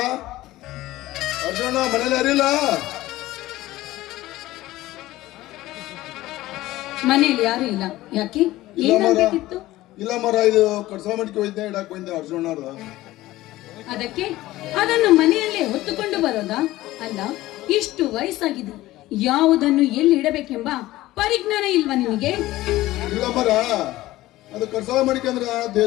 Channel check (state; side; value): quieter; right; 16.8 dB